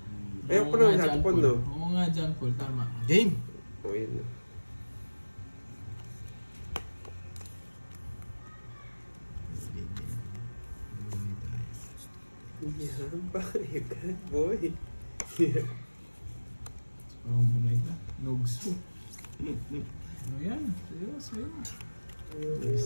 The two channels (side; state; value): both; inverted; correlation -1.00